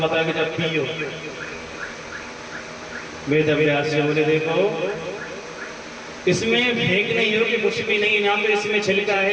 कि जब पियो? वेद व्यास जी बोले देखो इसमें फेंक नहीं हो कि कुछ भी नहीं, ना तो इसमें छिलका है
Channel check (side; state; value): both; identical; correlation 1.00